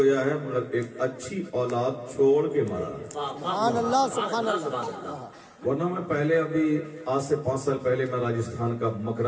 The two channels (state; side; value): identical; both; correlation 1.00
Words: ہے مگر ایک اچھی اولاد چھوڑ کے مرا ہے۔ سبحان اللہ، سبحان اللہ۔ ورنہ میں پہلے ابھی آج سے 5 سال پہلے میں راجستھان کا